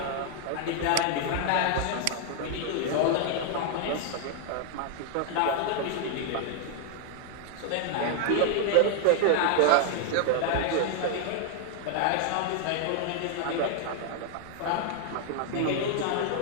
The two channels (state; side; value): different; both; correlation 0.00